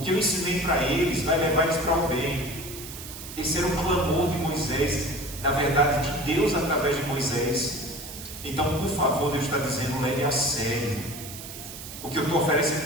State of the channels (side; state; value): right; noise; hiss, 12 dB below the sound